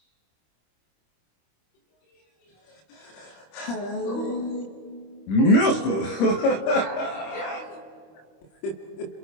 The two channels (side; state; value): right; late; 26 ms